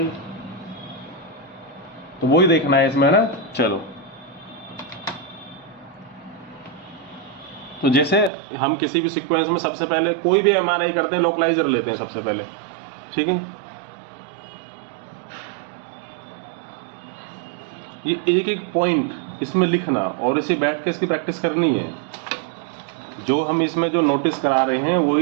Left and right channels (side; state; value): left; drops out; at 8.3 s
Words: तो वही देखना है इसमें ना। चलो, तो जैसे हम किसी भी सीक्वेंस में सबसे पहले कोई भी एमआरआई करते हैं, लोकलाइजर लेते हैं सबसे पहले, ठीक है? ये एक एक पॉइंट इसमें लिखना और इसे बैठ के इसकी प्रैक्टिस करनी है। जो हम इसमें जो नोटिस करा रहे हैं